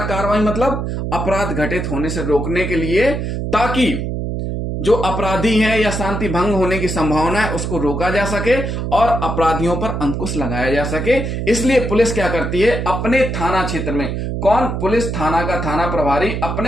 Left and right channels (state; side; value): noise; right; hum, 3 dB below the sound